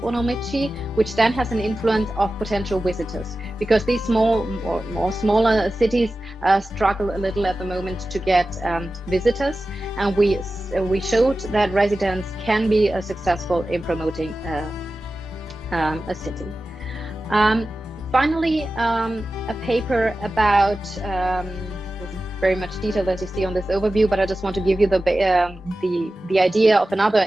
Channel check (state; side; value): normal; both; correlation 0.94